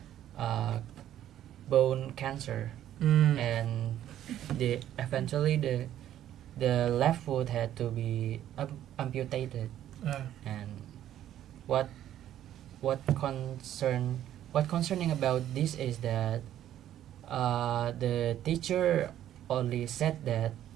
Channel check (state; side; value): quieter; left; 11.7 dB